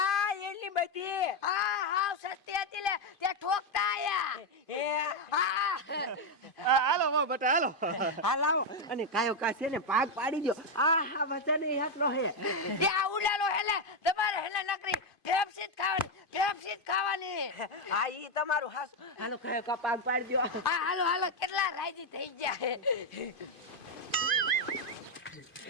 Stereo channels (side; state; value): right; late; 2.5 ms